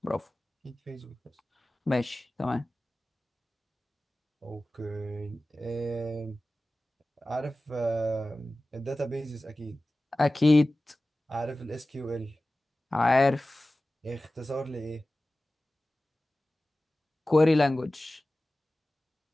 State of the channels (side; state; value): both; normal; correlation 0.96